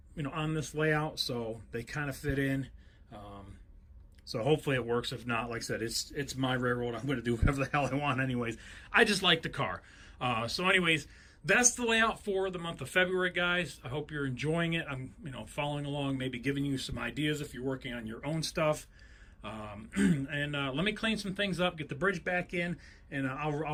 on this layout, so they kind of fit in. So hopefully it works. If not, like I said, it's my railroad. I'm going to do whatever the hell I want anyways. I just like the car. So anyways, that's the layout for the month of February, guys. I hope you're enjoying it. I'm, following along, maybe giving you some ideas if you're working on your own stuff. And let me clean some things up, get the bridge back in, and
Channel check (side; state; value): both; identical; correlation 1.00